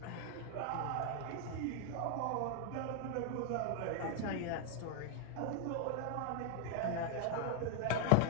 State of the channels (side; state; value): both; different; correlation 0.00